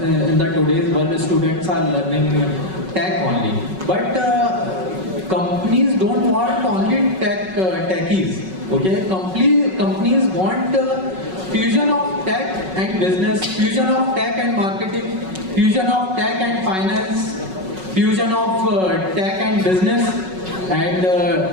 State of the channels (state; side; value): late; left; 5.4 ms